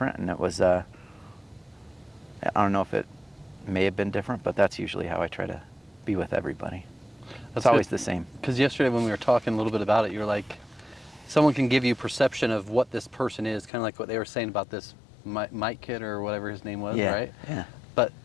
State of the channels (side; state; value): right; drops out; at 13.7 s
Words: And it was, I don't know if it may have been different, but that's usually how I try to be with everybody. It's always the same. Because yesterday when we were talking a little bit about it, you're like, someone can give you perception of what this person is, kind of like what they were saying about this Mike kid or whatever his name was, Yeah, right? yeah. But